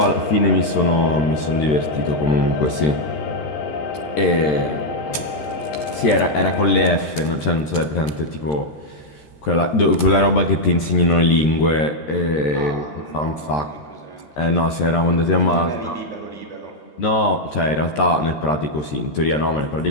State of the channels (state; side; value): late; right; 13 ms